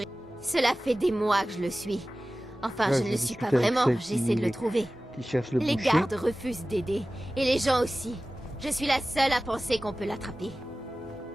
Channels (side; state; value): both; normal; correlation 0.96